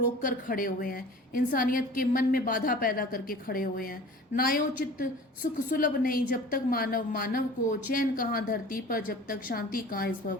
कर खड़े हुए हैं, इंसानियत के मन में बाधा पैदा करके खड़े हुए हैं। न्यायोचित सुख सुलभ नहीं, जब तक मानव मानव को, चैन कहाँ धरती पर जब तक शांति कहाँ इस भव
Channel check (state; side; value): normal; both; correlation 0.42